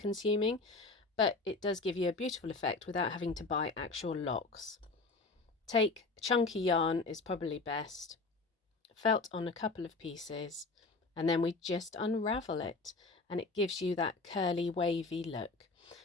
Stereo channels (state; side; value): quieter; right; 3.7 dB